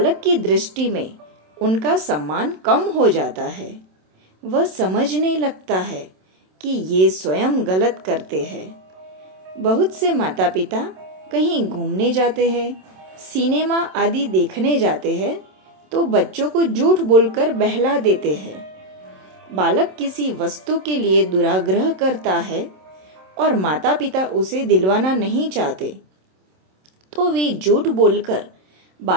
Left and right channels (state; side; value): late; left; 27 ms